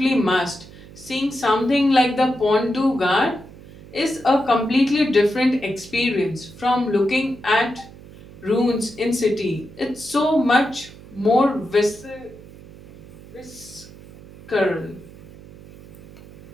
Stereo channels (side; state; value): right; noise; hum, 19 dB below the sound